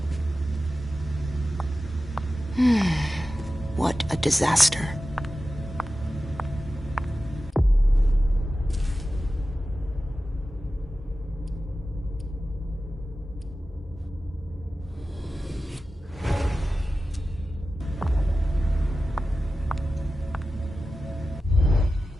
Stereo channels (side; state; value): both; normal; correlation 0.94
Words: What a disaster.